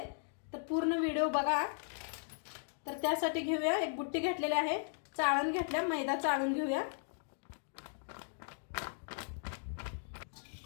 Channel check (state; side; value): silent; right; digital silence